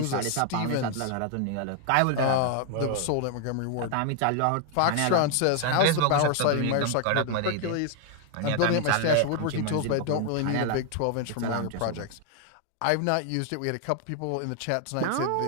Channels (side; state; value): both; different; correlation 0.00